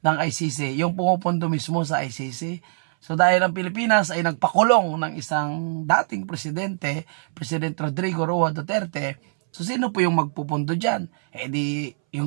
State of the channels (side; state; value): left; silent; 63 dB below the other